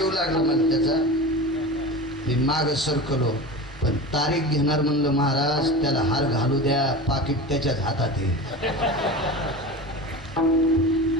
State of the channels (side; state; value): both; normal; correlation 0.30